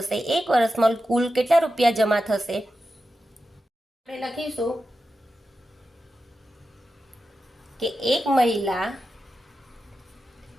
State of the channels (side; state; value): both; normal; correlation 0.91